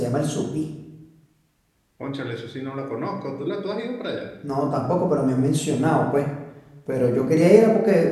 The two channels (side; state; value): both; identical; correlation 1.00